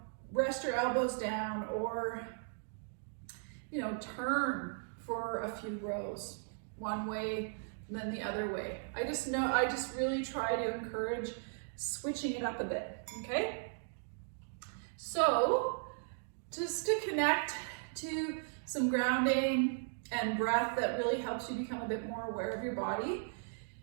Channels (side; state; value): left; silent; digital silence